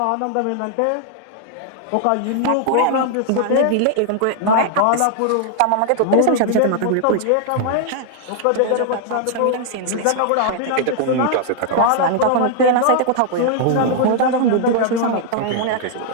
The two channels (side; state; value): both; different; correlation 0.00